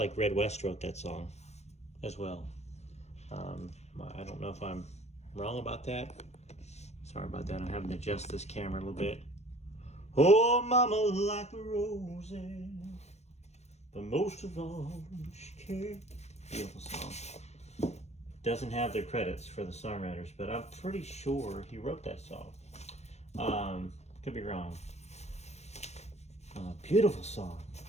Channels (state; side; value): late; right; 0.32 ms